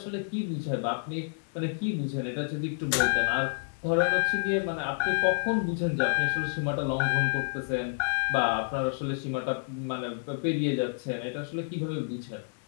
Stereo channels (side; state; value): right; silent; digital silence